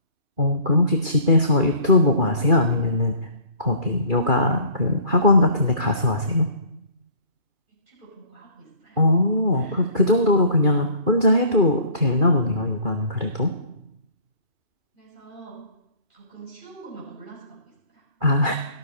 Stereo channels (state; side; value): late; left; 2.4 ms